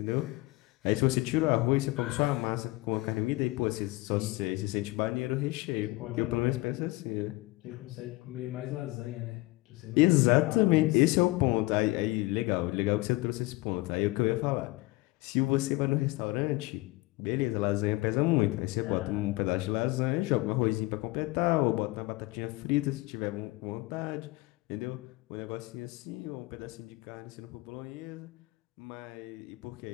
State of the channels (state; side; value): quieter; right; 21.1 dB